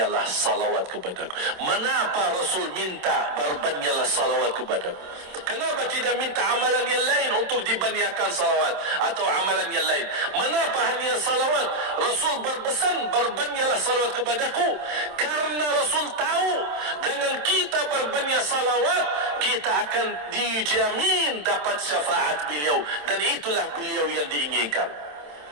salawat kepadaku. Mengapa Rasul minta berbanyaklah salawat kepadaku? Kenapa tidak minta amalan yang lain untuk dibanyakkan salawat atau amalan yang lain? Mengapa hanya salawat? Rasul berpesan berbanyaklah salawat kepadaku, karena Rasul tahu dengan kita berbanyak salawat kita akan dijamin dapat syafaat beliau, dan itulah beliau yang diinginkan.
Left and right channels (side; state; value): left; late; 27 ms